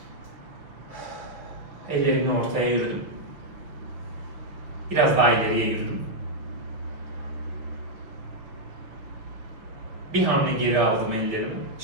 Ellerimle ortaya yürüdüm. Biraz daha ileriye yürüdüm. Bir hamle geri aldım ellerimi.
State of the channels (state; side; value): late; left; 6.3 ms